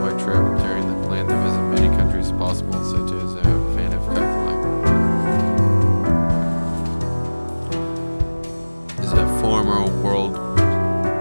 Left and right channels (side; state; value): both; inverted; correlation -1.00